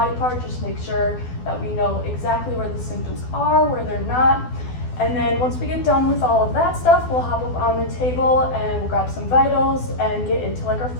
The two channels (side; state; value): right; late; 12 ms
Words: part, just make sure that we know exactly where the symptoms are, where they're not. And then once we get done with all of that stuff, we'll hop up on the table and we'll grab some vitals and get into like our